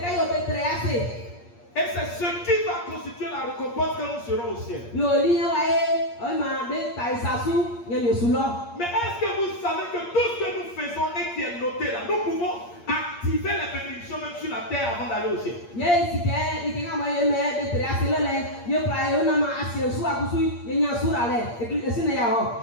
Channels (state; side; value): late; right; 8.6 ms